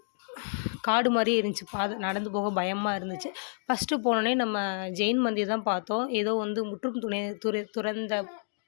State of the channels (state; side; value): silent; right; digital silence